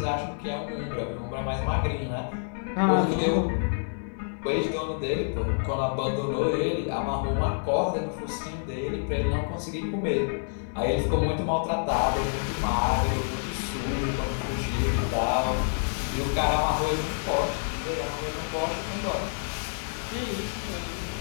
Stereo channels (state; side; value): silent; right; digital silence